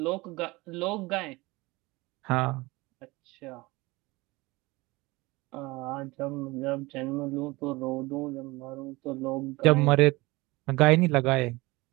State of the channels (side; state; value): left; quieter; 22.3 dB